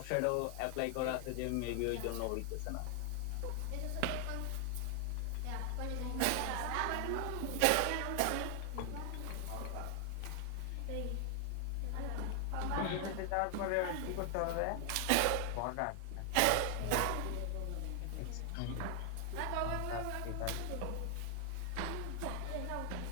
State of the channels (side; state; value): both; different; correlation 0.00